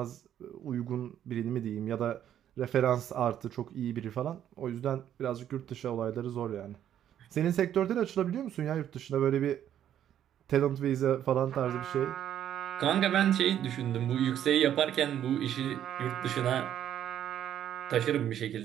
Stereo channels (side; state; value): left; quieter; 10.5 dB